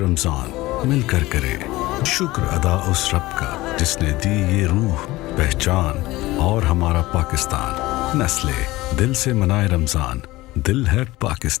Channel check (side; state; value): right; quieter; 18.9 dB